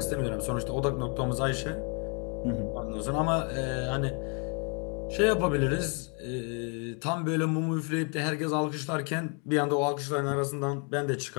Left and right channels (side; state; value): right; quieter; 37.4 dB